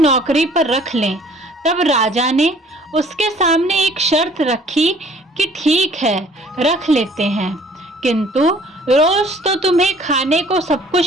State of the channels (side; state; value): both; normal; correlation 0.55